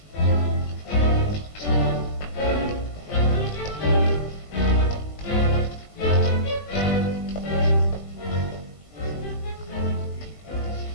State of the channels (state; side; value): late; right; 19 ms